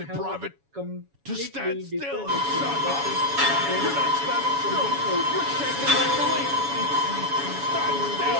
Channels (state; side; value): late; left; 7.1 ms